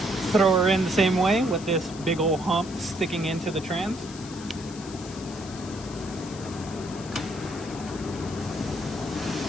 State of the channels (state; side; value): noise; left; hiss, 16 dB below the sound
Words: throw her in the same way with this big old hump sticking into the trans.